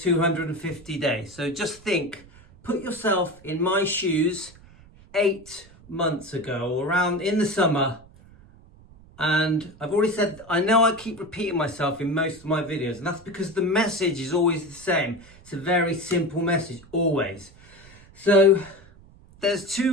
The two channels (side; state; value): right; noise; rumble, 24 dB below the sound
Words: 250 days. So just think, put yourself in my shoes 8 months ago, around in the summer. And I've already said, I know I keep repeating myself in most of my videos, and that's because the message is always the same. It's a very simple message, always. So there's